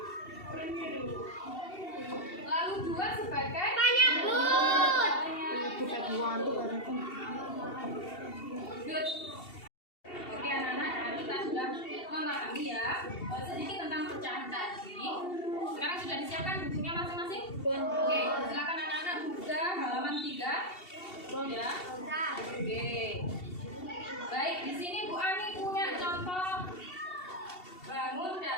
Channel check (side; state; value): right; late; 2.7 ms